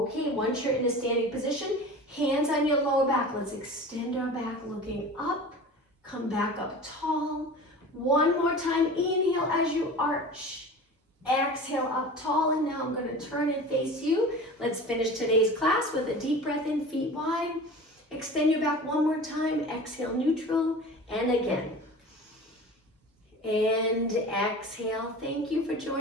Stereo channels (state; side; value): normal; both; correlation 0.37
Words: once you're in a standing position, hands on your lower back. Let's extend our back looking up. Come back up tall. One more time, inhale as you arch. Exhale up tall, and now I'm going to turn and face you. Let's finish today's class with a deep breath in, feet wide. Extend your back one more time. Exhale, neutral, and again. And exhale. Thank you for